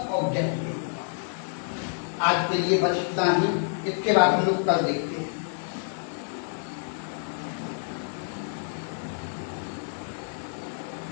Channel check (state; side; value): silent; right; 59 dB below the other